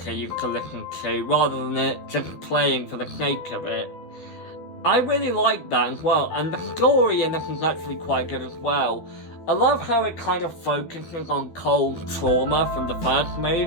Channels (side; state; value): right; late; 12 ms